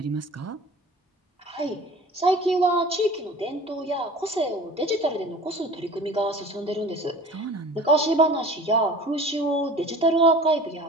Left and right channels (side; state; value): both; normal; correlation 0.41